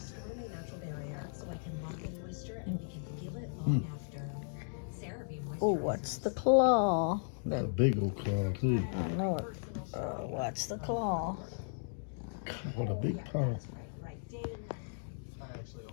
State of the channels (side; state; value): right; silent; digital silence